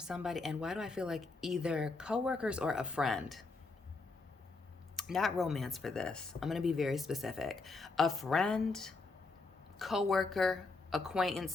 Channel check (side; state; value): right; quieter; 3.7 dB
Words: And why do I feel like either coworkers or a friend? Not romance for this. I'm going to be very specific. A friend, coworker, acquaintance,